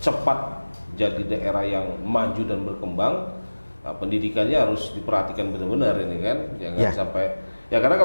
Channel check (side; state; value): both; inverted; correlation -1.00